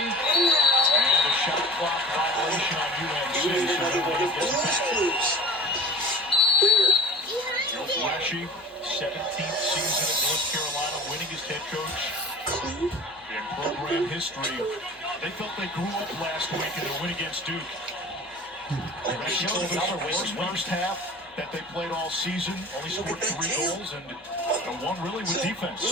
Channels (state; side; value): normal; both; correlation 0.39